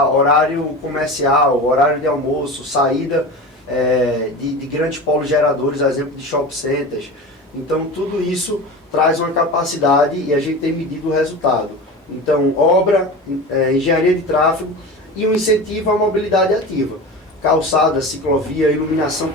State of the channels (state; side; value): normal; both; correlation 0.30